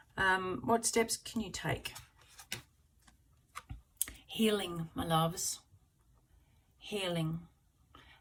What steps can you take? Healing, my loves. Healing.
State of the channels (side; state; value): both; identical; correlation 1.00